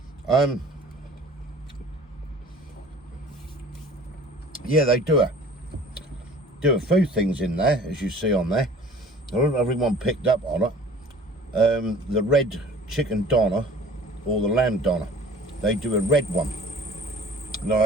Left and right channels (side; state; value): both; normal; correlation 0.47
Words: Yeah, they do a few things in there, as you see on there. I don't know if everyone picked up on it. The red chicken doner or the lamb doner, they do a red one. Now